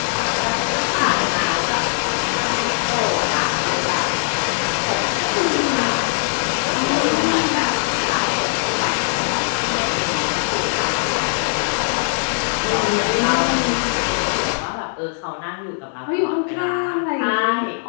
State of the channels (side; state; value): right; silent; digital silence